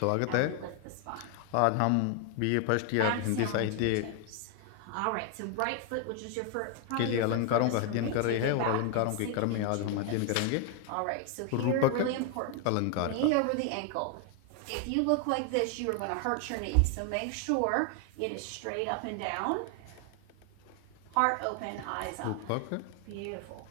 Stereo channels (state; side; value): different; both; correlation 0.00